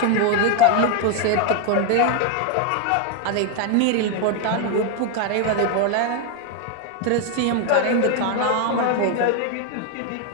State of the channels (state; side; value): different; both; correlation 0.01